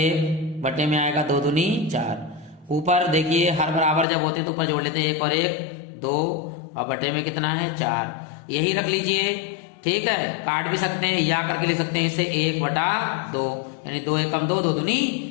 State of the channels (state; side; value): drops out; right; at 4.0 s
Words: बटे में आएगा 2 दूनी 4। ऊपर देखिए हर बराबर जब होते तो ऊपर जोड़ लेते हैं, 1 और 1 2, और बटे में कितना है 4, यही रख लीजिए। ठीक है, काट भी सकते हैं या करके लिख सकते हैं इसे 1/2, यानी 2 एकम 2, 2 दूनी